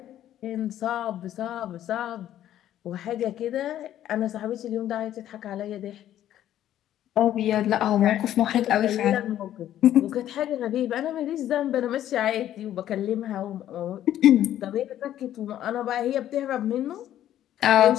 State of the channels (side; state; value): right; quieter; 11.9 dB